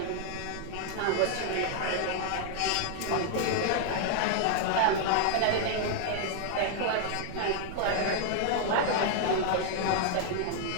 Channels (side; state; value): both; different; correlation 0.00